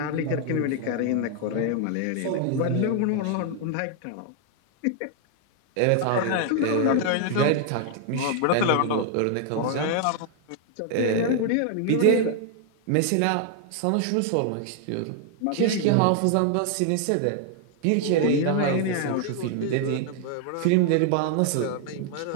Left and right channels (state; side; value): different; both; correlation 0.00